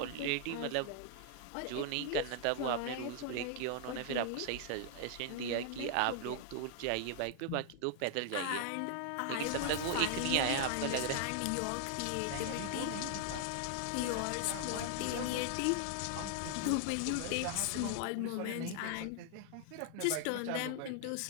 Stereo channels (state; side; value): different; both; correlation 0.00